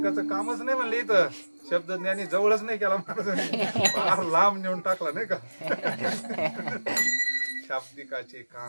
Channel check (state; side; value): inverted; both; correlation -1.00